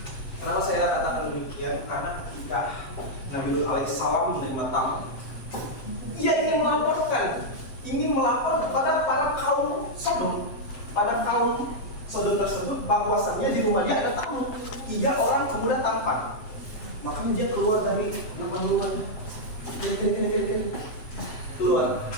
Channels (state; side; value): late; right; 7.7 ms